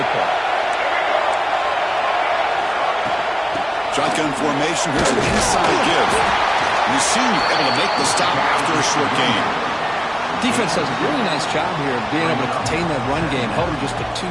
Shotgun formation. Here's an inside give. You seem able to make the stop after a short game. Defense does a really nice job here of being able to contain that run game, held him just to 2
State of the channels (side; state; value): both; identical; correlation 1.00